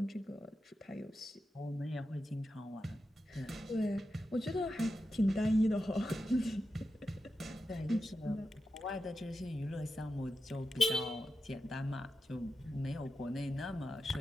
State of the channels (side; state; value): both; normal; correlation 0.90